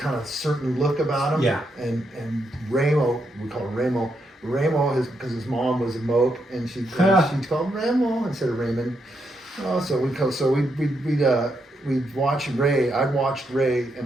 of certain look about him. Yeah. And Ramo, we call him Ramo. Ramo is because his mom was a mope, and she called him Ramo instead of Raymond. We'd watch Ray. I'd watched Ray, and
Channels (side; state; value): both; normal; correlation 0.80